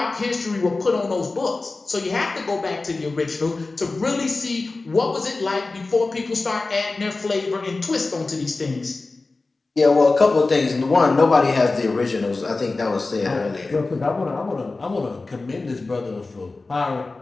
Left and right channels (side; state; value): right; quieter; 3.5 dB